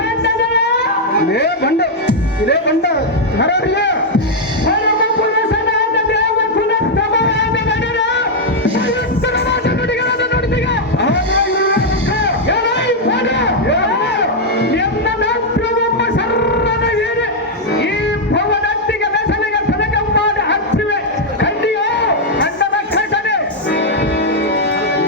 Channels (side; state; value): both; normal; correlation -0.02